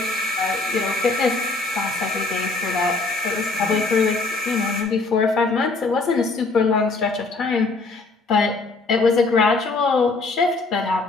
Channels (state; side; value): quieter; right; 3.6 dB